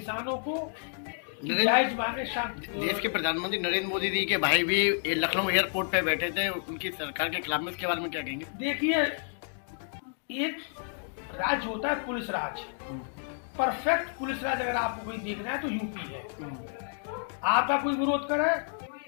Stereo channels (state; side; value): silent; right; digital silence